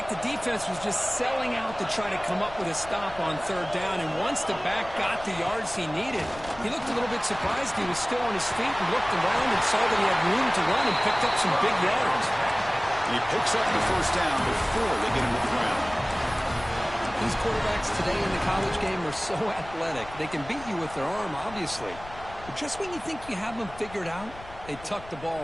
the defense was just selling out to try to come up with a stop on 3rd down, and once the back got the yards he needed, he looked a little bit surprised. He was still on his feet and looked around and saw that he had room to run and picked up some big yards. He picks up the 1st down before they get him to the ground. These quarterbacks today in the college game are so athletic. They can beat you with their arm, obviously. But just when you think you have them figured out, they tuck the ball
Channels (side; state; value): left; noise; rumble, 17 dB below the sound